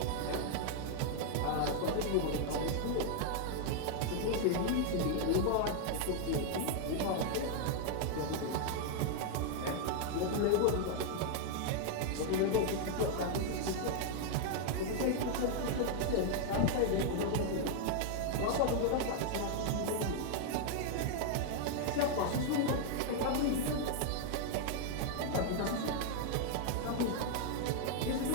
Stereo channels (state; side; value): different; both; correlation 0.00